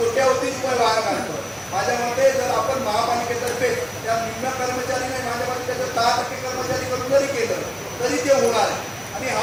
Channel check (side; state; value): both; identical; correlation 1.00